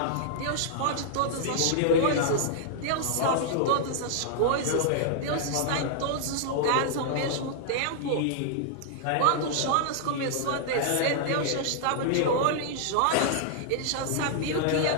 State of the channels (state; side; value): different; both; correlation -0.01